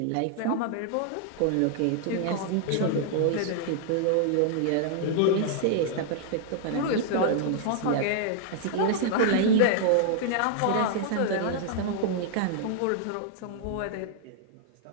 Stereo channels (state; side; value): different; both; correlation 0.00